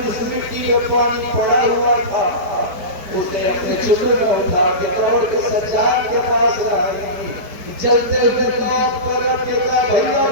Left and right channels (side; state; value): left; late; 4.7 ms